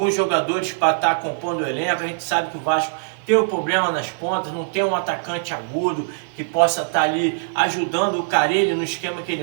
jogadores para estar compondo o elenco. A gente sabe que o Vasco tem o problema nas pontas, não tem um atacante agudo que possa estar ali ajudando o Carille no esquema que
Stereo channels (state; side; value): silent; left; 64 dB below the other